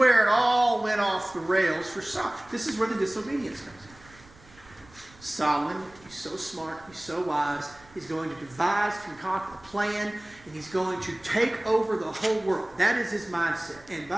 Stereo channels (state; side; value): noise; right; rumble, 25 dB below the sound